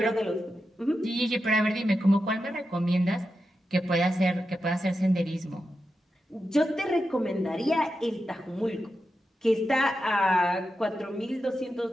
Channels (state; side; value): normal; both; correlation 0.89